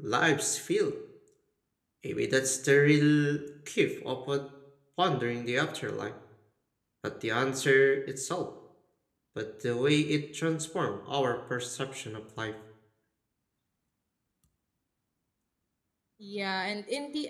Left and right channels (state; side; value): identical; both; correlation 1.00